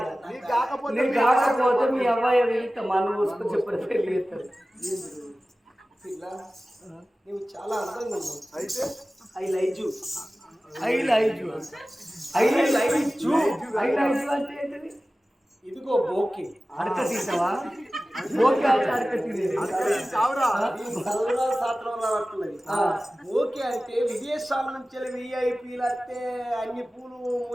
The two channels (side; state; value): both; normal; correlation 0.96